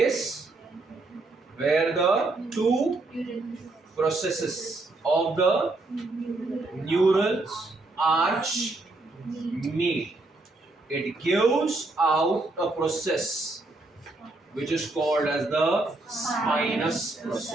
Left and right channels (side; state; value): left; quieter; 3.1 dB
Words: where the two processes of the neural arch meet. It gives out a process which is called as the spinous